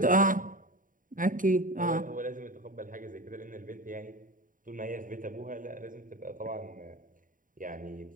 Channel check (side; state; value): left; late; 0.39 ms